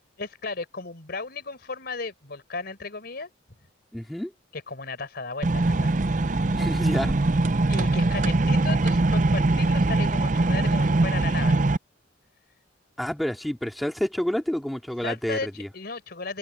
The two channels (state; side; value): normal; both; correlation 0.74